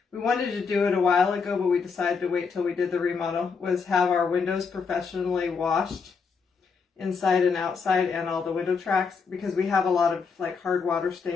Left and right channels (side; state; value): right; quieter; 5.3 dB